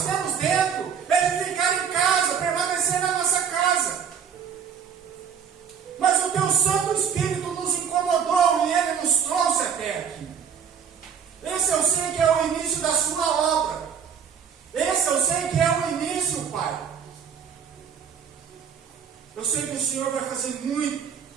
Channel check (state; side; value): quieter; left; 7.3 dB